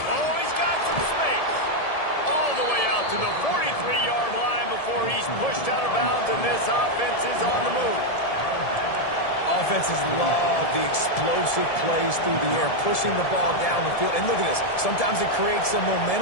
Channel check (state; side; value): late; right; 1.7 ms